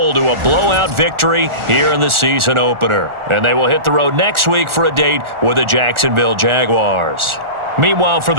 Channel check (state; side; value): late; left; 1.4 ms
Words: to a blowout victory here in the season opener. And they will hit the road next week for a date with the Jacksonville Jaguars. Meanwhile, for